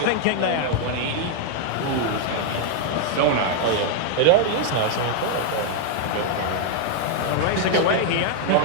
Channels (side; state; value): both; different; correlation 0.00